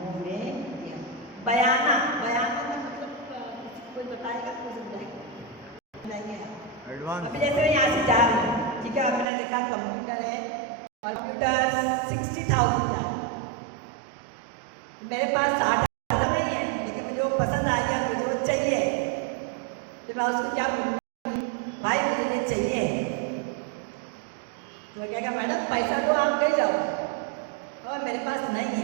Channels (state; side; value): drops out; left; at 9.2 s